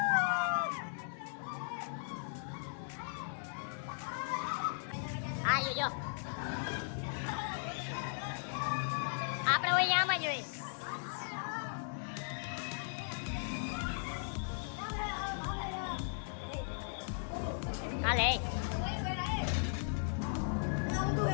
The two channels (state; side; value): silent; right; digital silence